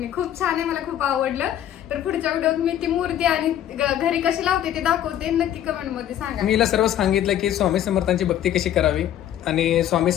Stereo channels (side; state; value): right; quieter; 11.2 dB